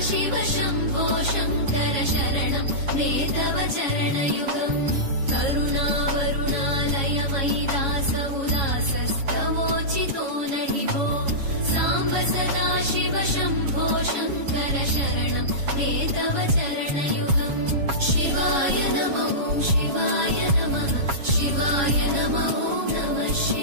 शम्भो शङ्कर शरणं मे तव चरणयुगम् करुणावरुणालय मयि दास उदासस्तवोचितो नहि भो साम्ब सदाशिव शम्भो शङ्कर शरणं मे तव चरणयुगम् शिवाय नमो शिवाय नमः शिवाय नमो नमः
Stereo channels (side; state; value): left; late; 7.2 ms